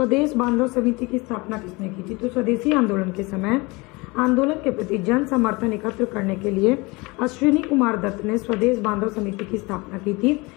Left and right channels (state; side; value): quieter; right; 24.9 dB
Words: बांधव समिति की स्थापना किसने की थी? तो स्वदेशी आंदोलन के समय आंदोलन के प्रति जन समर्थन एकत्र करने के लिए अश्विनी कुमार दत्त ने स्वदेश बांधव समिति की स्थापना की थी